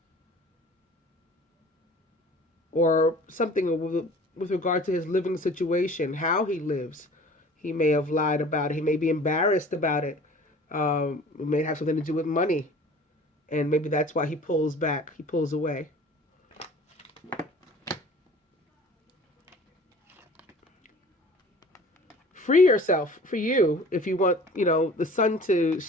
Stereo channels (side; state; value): both; normal; correlation 0.46